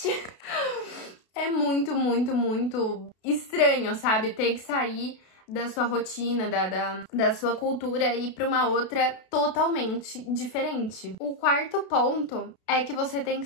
É muito estranho, sabe? Ter que sair da sua rotina, da sua cultura e ir pra uma outra totalmente diferente. O quarto ponto é que você tem que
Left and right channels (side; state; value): right; late; 32 ms